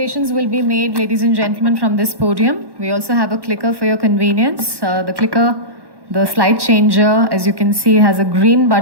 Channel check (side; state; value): left; late; 1.1 ms